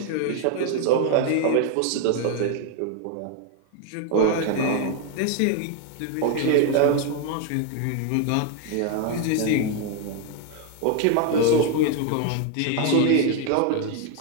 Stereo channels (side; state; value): both; different; correlation 0.01